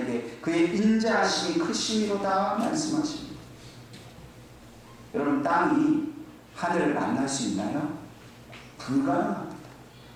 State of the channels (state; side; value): identical; both; correlation 1.00